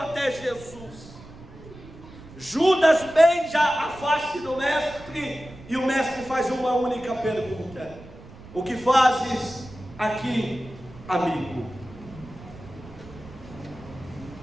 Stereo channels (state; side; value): noise; right; rumble, 18 dB below the sound